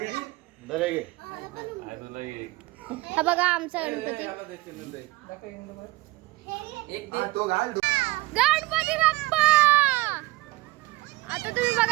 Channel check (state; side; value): quieter; left; 20.8 dB